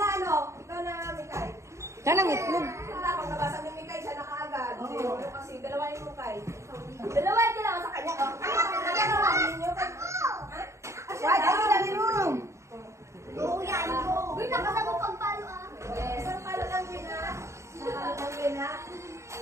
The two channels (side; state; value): left; late; 0.14 ms